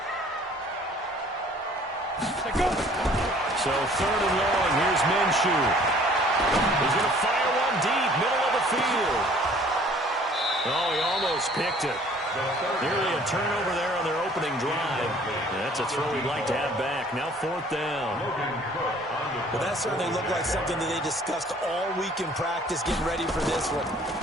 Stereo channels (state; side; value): normal; both; correlation 0.55